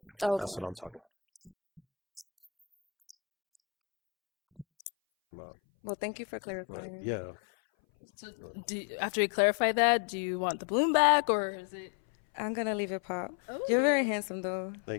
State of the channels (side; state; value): right; drops out; at 4.7 s